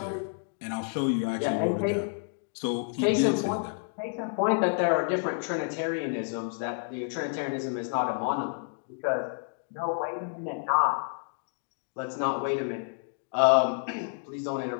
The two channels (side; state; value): right; silent; digital silence